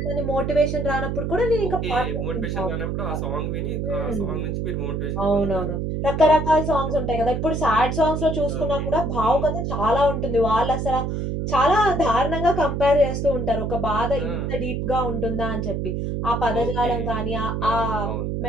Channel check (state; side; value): noise; right; hum, 2 dB below the sound